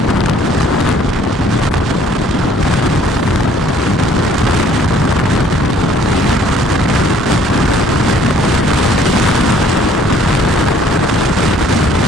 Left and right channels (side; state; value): both; normal; correlation 0.59